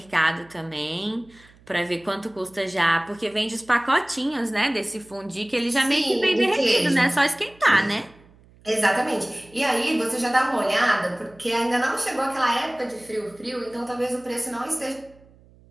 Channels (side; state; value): right; noise; hum, 27 dB below the sound